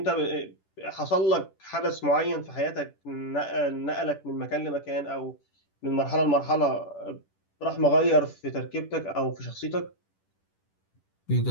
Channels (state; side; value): late; right; 10 ms